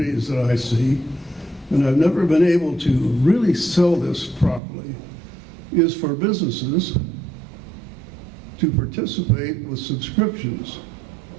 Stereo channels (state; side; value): drops out; left; at 4.6 s